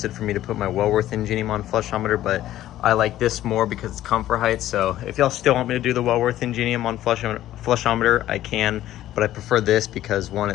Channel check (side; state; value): right; quieter; 13.5 dB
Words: for me to put my Wellworth Ingenium on flushometer, but I like this more because it's comfort height. So if y'all still want me to do the Wellworth Ingenium on flushometer, I can, but I prefer this because one,